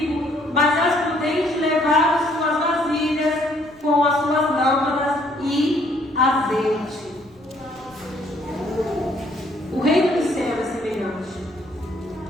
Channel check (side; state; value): right; noise; rumble, 28 dB below the sound